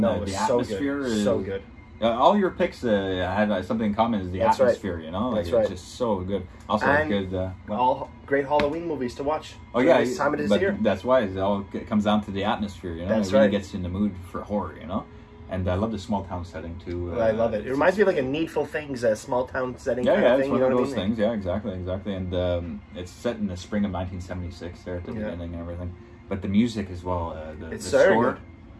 the so atmosphere good. is so good. All your picks had something in common, is the atmosphere, you know? Like, it's just so good. Also, and good... all great Halloween movies to watch. Oh, yeah. This time of this year. That's why it comes down to the atmosphere, you know? That's it really gets you in the mood for horror, you know? And I love the small town setting, too. I love it. It reminds me of like a Needful Things, a small town setting kind of thing. It's one of those things. Yeah, exactly. And it's set in the spring of 1976 there at the beginning and everything. But the music as well. The score. Good.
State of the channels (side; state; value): both; identical; correlation 1.00